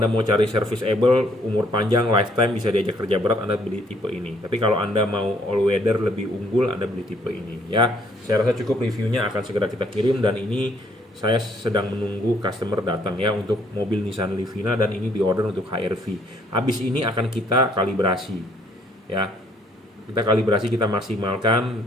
mau cari serviceable, umur panjang, lifetime, bisa diajak kerja berat, Anda beli tipe ini. Tapi kalau Anda mau all weather lebih unggul, Anda beli tipe ini ya. Saya rasa cukup, reviewnya akan segera kita kirim, dan ini saya sedang menunggu customer datang ya untuk mobil Nissan Livina, dan ini diorder untuk HR-V. Habis ini akan kita kalibrasi ya. Kita kalibrasi, kita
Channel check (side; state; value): both; normal; correlation 0.65